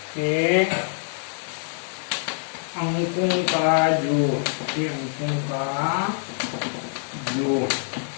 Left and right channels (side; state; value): right; silent; 62 dB below the other